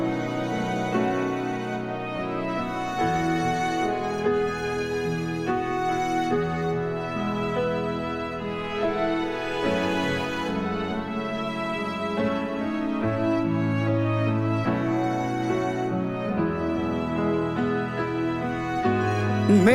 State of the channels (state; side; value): identical; both; correlation 1.00